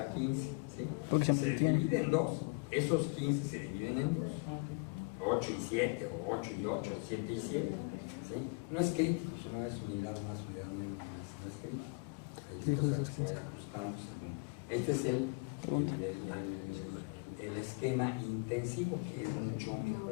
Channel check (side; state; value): right; quieter; 32.0 dB